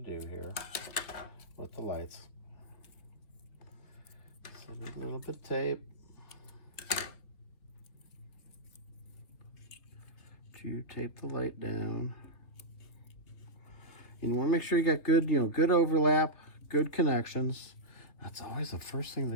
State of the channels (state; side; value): late; right; 3.0 ms